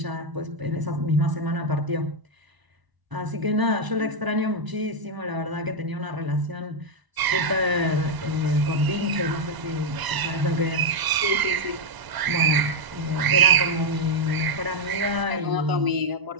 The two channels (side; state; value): left; late; 1.0 ms